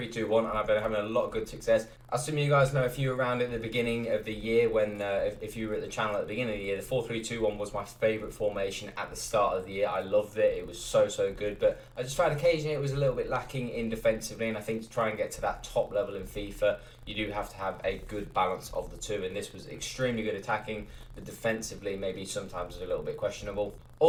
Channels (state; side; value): identical; both; correlation 1.00